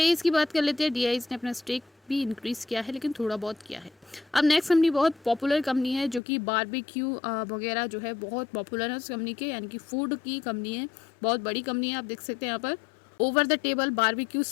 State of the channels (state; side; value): drops out; right; at 6.2 s